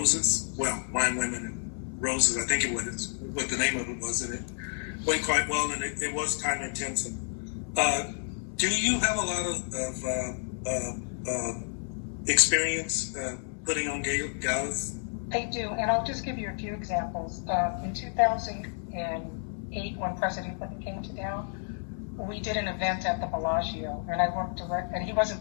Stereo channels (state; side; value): silent; right; 58 dB below the other